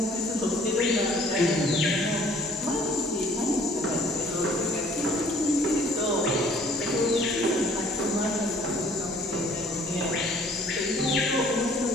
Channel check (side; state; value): both; normal; correlation 0.56